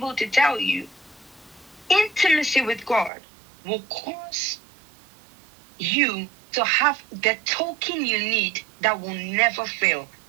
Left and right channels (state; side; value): drops out; left; at 3.1 s